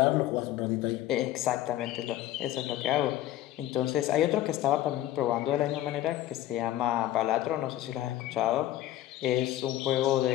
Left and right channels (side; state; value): right; quieter; 14.0 dB